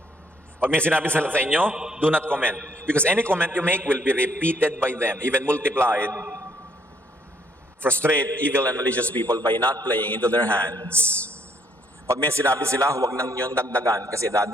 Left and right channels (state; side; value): normal; both; correlation 0.68